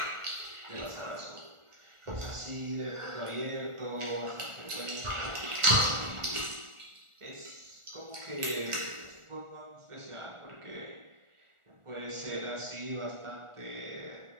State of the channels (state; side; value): late; left; 1.4 ms